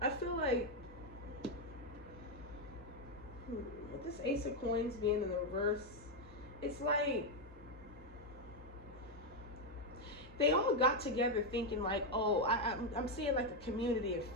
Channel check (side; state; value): both; normal; correlation 0.03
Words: feel like with this Ace of Coins being in the reverse, it's like they all got together thinking like, oh, I'm seeing like a community, a